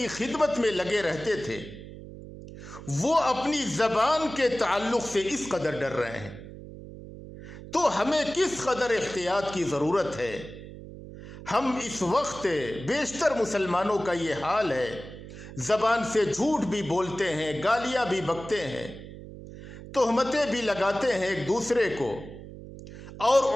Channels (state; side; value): noise; right; hum, 14 dB below the sound